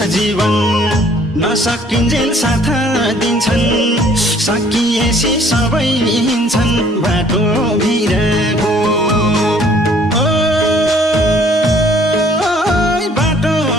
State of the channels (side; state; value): both; normal; correlation 0.58